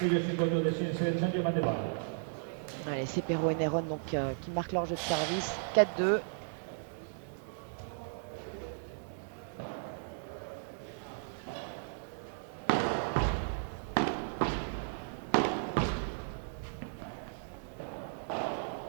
Allez, Cepero et Néron donc, qui marquent leur jeu de service. 4-2.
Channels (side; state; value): left; silent; digital silence